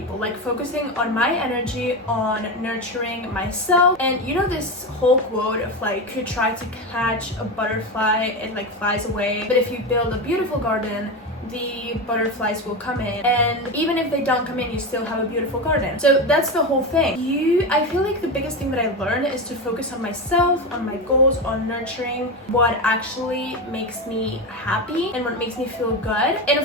like focusing on my energy, on nurturing myself. And you know this whole quote of like, if you try to catch a butterfly, it like flies away, but if you build a beautiful garden, the butterflies will come in, and even if they don't come in, you still have a beautiful garden. So that's the whole thing. I feel like the biggest thing that I learned is to focus on myself, on my goals, on nurturing what actually makes me happy and what makes me feel good, and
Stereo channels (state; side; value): normal; both; correlation 0.18